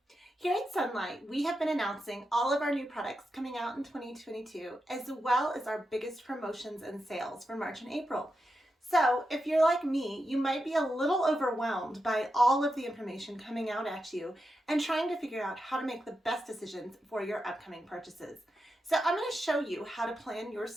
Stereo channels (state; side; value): normal; both; correlation 0.88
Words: Here at Sunlight, we have been announcing all of our new products coming out in 2022, as well as our biggest promotions and sales for March and April. So if you're like me, you might be a little overwhelmed by all of the information coming out at you and trying to figure out how to make the best decisions for your upcoming purchases. So I'm going to show you how to plan your